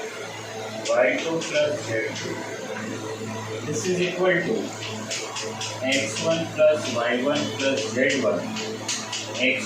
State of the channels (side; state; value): both; identical; correlation 1.00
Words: y2 plus z2. This is equal to x1 plus y1 plus z1